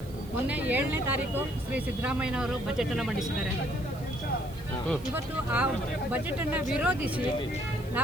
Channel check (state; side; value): noise; right; hiss, 22 dB below the sound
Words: ಮೊನ್ನೆ 7ನೇ ತಾರೀಕು ಶ್ರೀ ಸಿದ್ದರಾಮಯ್ಯನವರು ಬಜೆಟ್ ಅನ್ನು ಮಂಡಿಸಿದ್ದಾರೆ. ಇವತ್ತು ಆ ಬಜೆಟ್ ಅನ್ನು ವಿರೋಧಿಸಿ